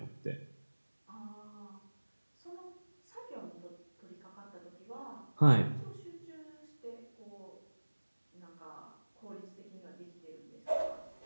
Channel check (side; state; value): both; inverted; correlation -1.00